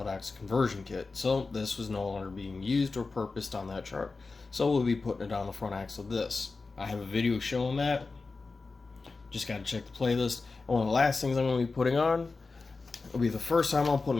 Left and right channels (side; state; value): right; quieter; 4.0 dB